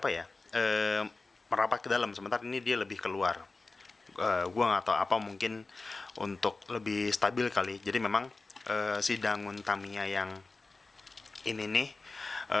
ya, merapat ke dalam. Sementara ini dia lebih keluar. Gua nggak tahu apa, mungkin untuk lebih stabil kali. Jadi memang si Dangun Tamiya yang ini nih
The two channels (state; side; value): quieter; right; 3.6 dB